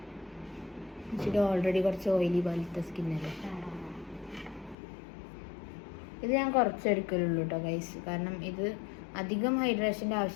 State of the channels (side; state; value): right; drops out; at 4.8 s